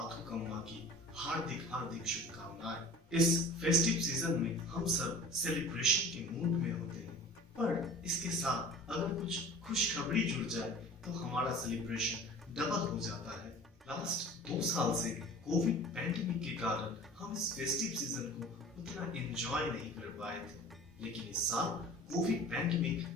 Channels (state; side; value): normal; both; correlation 0.42